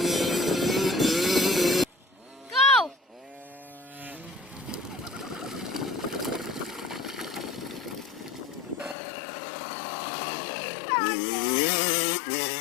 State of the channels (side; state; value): right; drops out; at 9.0 s